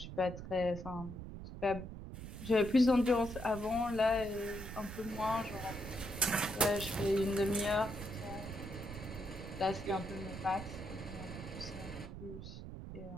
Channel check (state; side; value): noise; right; rumble, 10 dB below the sound